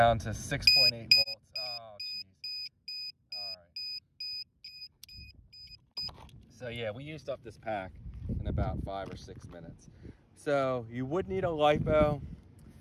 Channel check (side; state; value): both; identical; correlation 1.00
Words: to 6.8 volts. Oh, geez. All right. So yeah, we used up this pack in about 5 or 6 minutes. So you would need a lipo